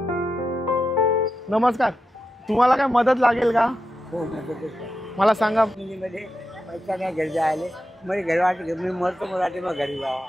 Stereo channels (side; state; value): both; normal; correlation 0.88